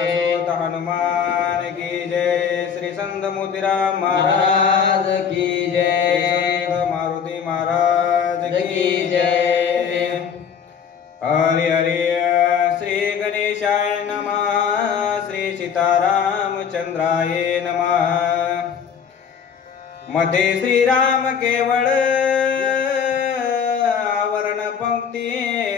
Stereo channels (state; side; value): quieter; right; 7.2 dB